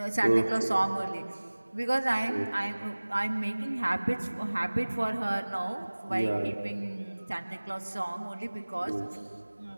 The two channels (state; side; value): inverted; both; correlation -1.00